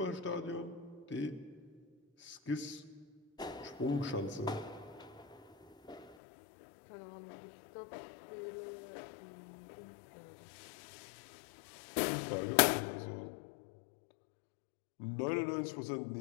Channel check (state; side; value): drops out; right; at 6.2 s